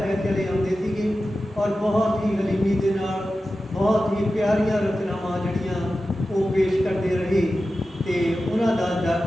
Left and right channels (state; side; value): normal; both; correlation 0.93